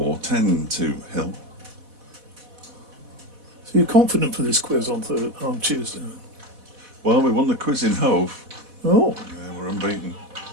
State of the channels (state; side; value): late; left; 4.1 ms